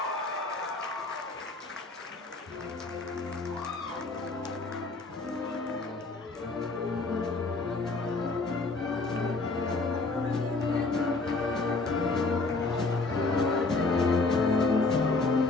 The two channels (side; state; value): right; quieter; 3.6 dB